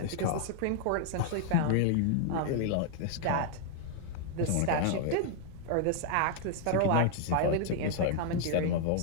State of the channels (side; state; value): both; different; correlation 0.00